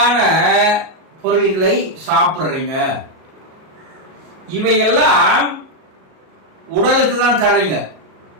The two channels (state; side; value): late; left; 38 ms